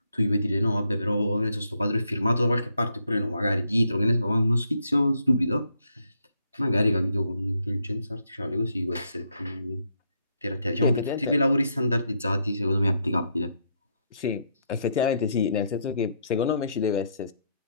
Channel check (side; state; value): both; inverted; correlation -0.75